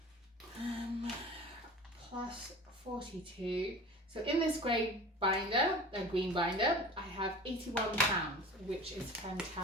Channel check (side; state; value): both; normal; correlation 0.38